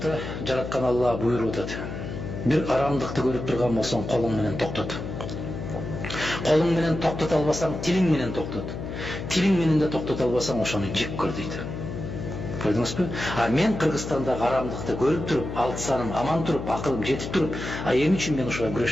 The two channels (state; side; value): noise; left; hum, 7 dB below the sound